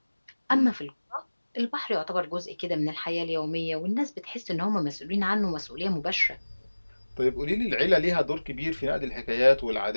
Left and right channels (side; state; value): both; inverted; correlation -1.00